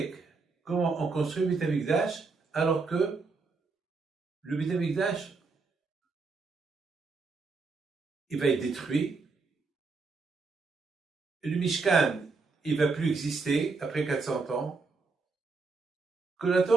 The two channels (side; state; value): left; quieter; 4.2 dB